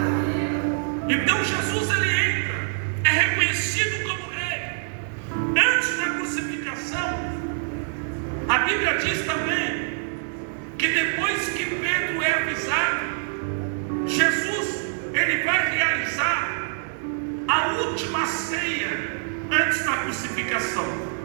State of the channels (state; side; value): silent; left; digital silence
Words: Então Jesus, ele entra, é reconhecido como Rei. Antes da crucificação, a Bíblia diz também que depois que Pedro é avisado, Jesus, ele vai realizar a última ceia antes da crucificação.